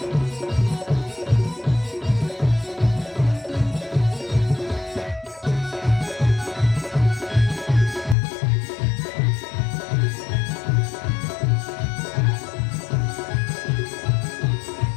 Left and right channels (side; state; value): right; drops out; at 8.2 s